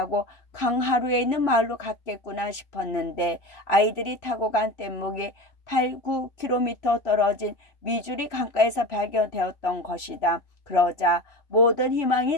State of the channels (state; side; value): late; right; 3.0 ms